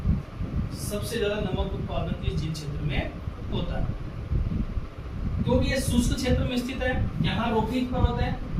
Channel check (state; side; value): identical; both; correlation 1.00